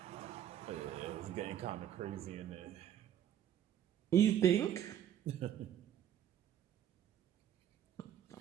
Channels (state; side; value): quieter; left; 10.4 dB